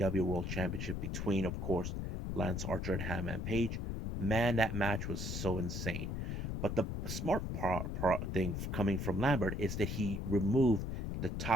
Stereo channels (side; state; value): left; noise; rumble, 3 dB below the sound